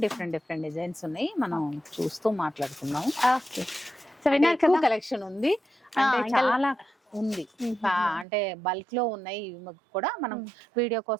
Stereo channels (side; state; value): left; drops out; at 8.2 s